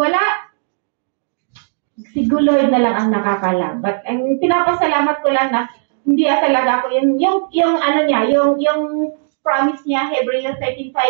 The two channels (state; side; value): silent; left; digital silence